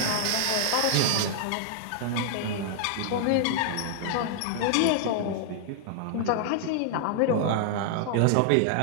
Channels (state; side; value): different; both; correlation -0.01